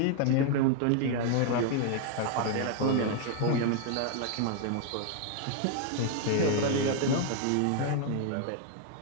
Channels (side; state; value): both; different; correlation 0.00